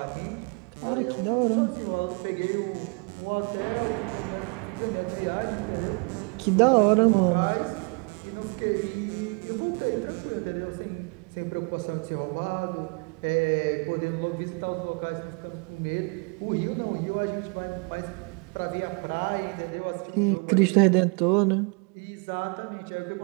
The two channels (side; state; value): left; quieter; 33.7 dB